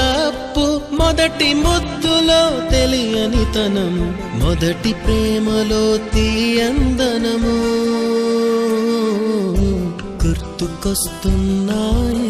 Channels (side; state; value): both; identical; correlation 1.00